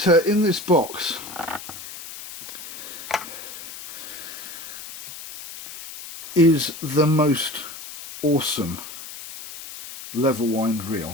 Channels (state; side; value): noise; left; hiss, 12 dB below the sound